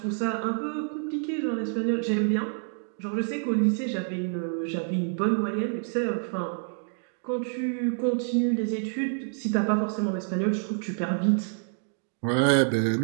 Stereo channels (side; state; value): left; silent; 60 dB below the other